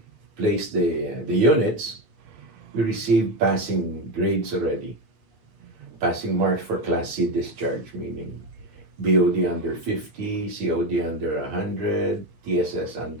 placed the units, we received passing grades already. Passing marks for Class C discharge, meaning BOD under 50, COD under 100, TSS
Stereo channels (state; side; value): late; left; 8.8 ms